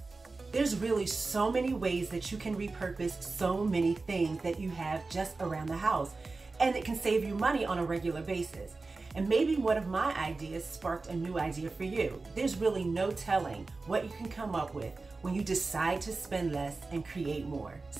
There's really so many ways that you can repurpose so many things that you have just around the house, and it can save you money on a regular basis. And maybe one of my ideas sparked a new idea for you. There's really no telling what you can come up with when you decide to spend less and create more.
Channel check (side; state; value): left; quieter; 3.7 dB